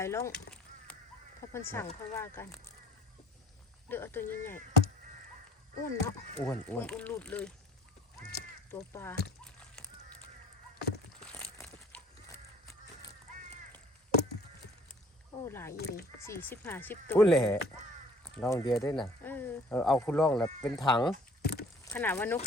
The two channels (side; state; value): both; normal; correlation 0.55